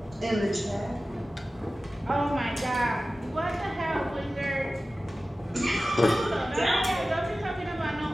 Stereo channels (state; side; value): normal; both; correlation 0.96